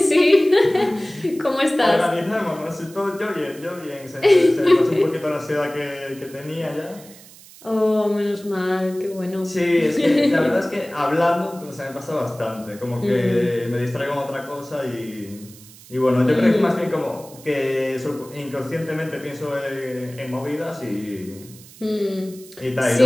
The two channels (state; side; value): noise; right; hiss, 21 dB below the sound